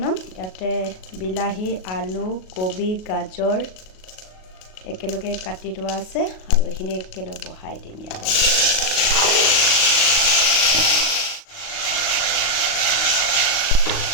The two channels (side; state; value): right; late; 38 ms